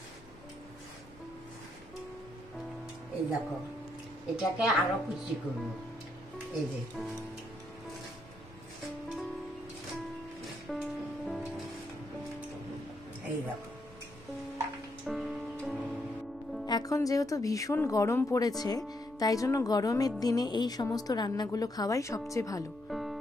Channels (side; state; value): right; noise; hum, 24 dB below the sound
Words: এই দেখো, এটাকে আরো কুচি করবো। এই যে এই দেখো। এখন যেহেতু ভীষণ গরম পড়েছে, তাই জন্য গরমের দিনে এই সমস্ত রান্নাগুলো খাওয়াই সবচেয়ে ভালো।